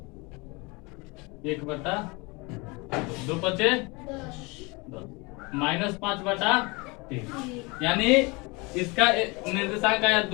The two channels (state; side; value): quieter; right; 26.8 dB